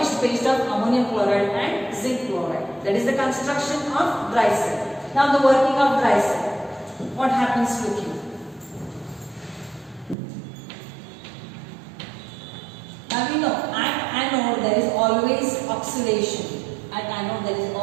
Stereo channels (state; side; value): drops out; left; at 10.2 s